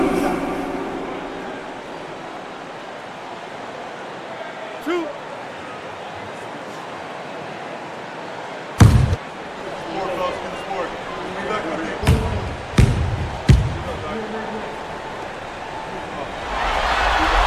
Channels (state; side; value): identical; both; correlation 1.00